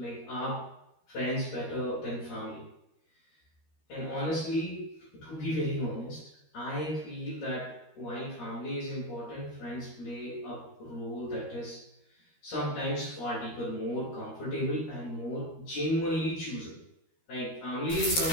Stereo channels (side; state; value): right; late; 13 ms